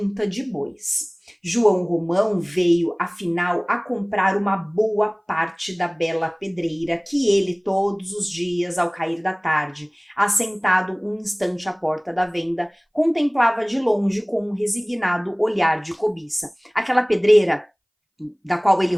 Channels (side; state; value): both; identical; correlation 1.00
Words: de bois. João Romão veio, afinal, a comprar uma boa parte da bela pedreira que ele, todos os dias, ao cair da tarde, assentado um instante à porta da venda, contemplava de longe com um resignado olhar de cobiça. Aquela pedreira da qual ele